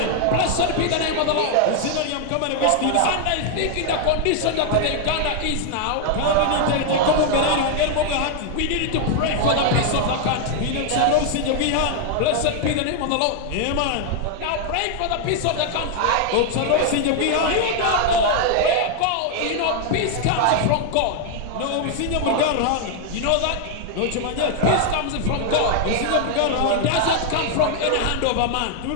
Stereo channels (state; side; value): different; both; correlation 0.00